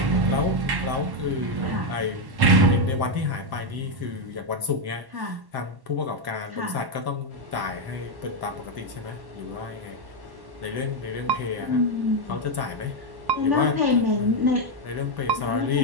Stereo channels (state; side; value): late; left; 1.1 ms